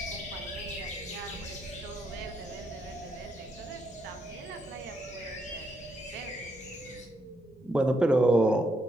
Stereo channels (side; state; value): both; normal; correlation 0.77